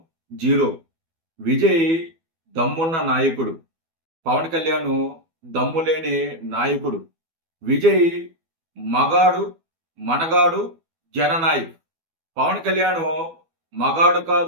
zero. విజయ్ దమ్మున్న నాయకుడు, పవన్ కళ్యాణ్ దమ్ము లేని నాయకుడు. విజయ్ మగాడు, మనగాడు, జననాయక్. పవన్ కళ్యాణ్ మగాడు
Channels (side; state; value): left; late; 12 ms